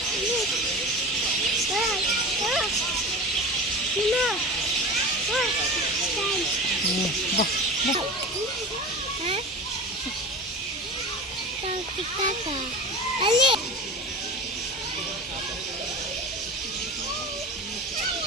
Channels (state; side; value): normal; both; correlation 0.32